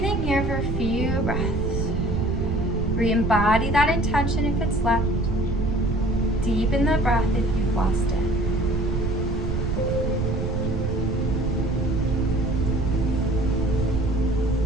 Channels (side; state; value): right; noise; rumble, 1 dB below the sound